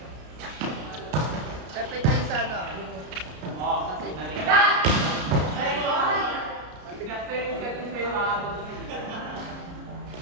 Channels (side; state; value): left; late; 33 ms